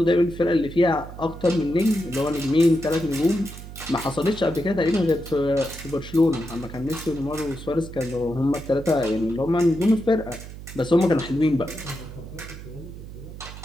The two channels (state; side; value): noise; right; hum, 13 dB below the sound